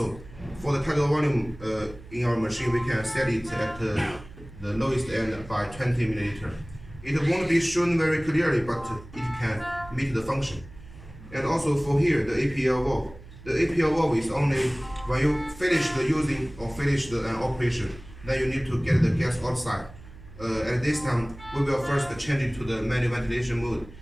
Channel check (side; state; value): right; noise; hum, 18 dB below the sound